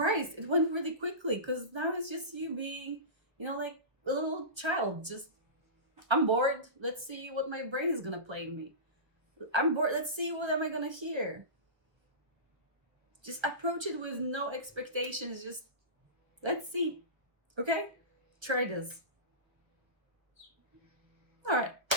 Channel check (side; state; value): left; late; 1.1 ms